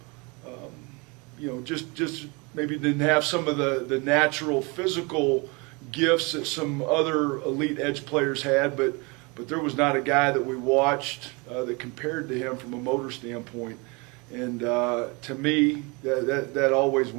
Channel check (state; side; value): quieter; left; 28.8 dB